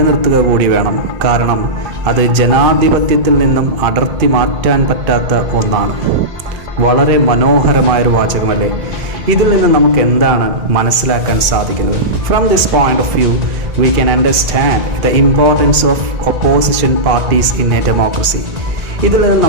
കൂടി വേണം. കാരണം അത് ജനാധിപത്യത്തിൽ നിന്നും അടർത്തി മാറ്റാൻ പറ്റാത്ത ഒന്നാണ്. വളരെ മനോഹരമായൊരു വാചകമല്ലേ? ഇതിൽ നിന്ന് നമുക്ക് എന്താണ് മനസ്സിലാക്കാൻ സാധിക്കുന്നത്? From this point of view we can understand the importance of opposition parties in a democracy. ഇതിൽ നിന്ന്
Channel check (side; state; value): left; late; 2.4 ms